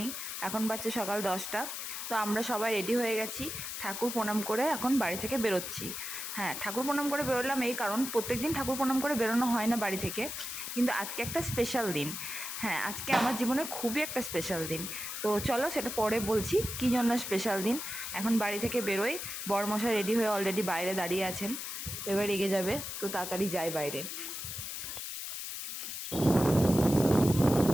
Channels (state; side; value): noise; left; hiss, 6 dB below the sound